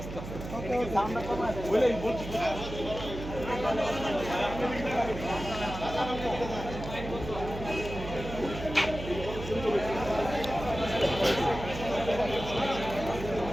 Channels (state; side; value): noise; right; hum, 9 dB below the sound